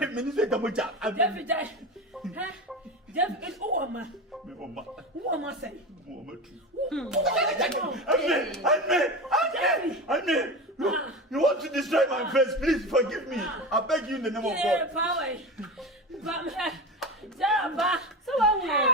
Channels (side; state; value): both; normal; correlation 0.25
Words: You want to destroy my face? Please forgive me. I beg you in the name of God.